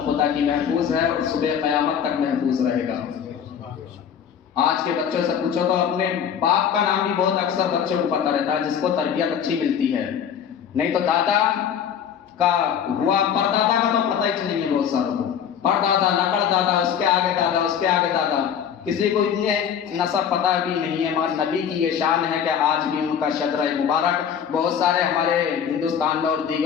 خدا کی محفوظ ہے اور صبح قیامت تک محفوظ رہے گا۔ آج کے بچوں سے پوچھو تو اپنے باپ کا نام بھی بہت اکثر بچوں کو پتہ رہتا ہے، جس کو تربیت اچھی ملتی ہے، نہیں تو دادا کا ہوا پردادا کا تو پتہ ہی نہیں ہے بہت ساروں کو۔ پردادا، نقل دادا، اس کے آگے دادا، اس کے آگے دادا، کسی کو اتنے نسب پتہ بھی نہیں ہے۔ مگر نبی کی یہ شان ہے کہ آج بھی ان کا شجرہ مبارک بہت سارے ہمارے ہندوستان میں اور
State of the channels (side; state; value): right; quieter; 8.2 dB